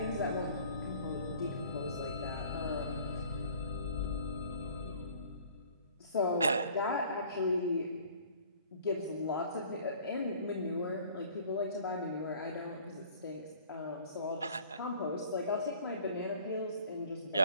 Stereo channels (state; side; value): inverted; both; correlation -0.51